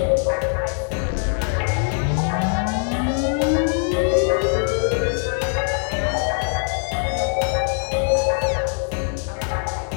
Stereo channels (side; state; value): right; silent; 60 dB below the other